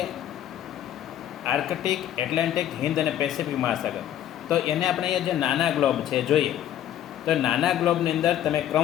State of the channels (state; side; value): quieter; right; 11.5 dB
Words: આર્કટિક, એટલાન્ટિક, હિન્દ અને પેસિફિક મહાસાગર, તો એને આપણે અહીંયા જે નાના ગ્લોબ છે જોઈએ તો નાના ગ્લોબની અંદર તમે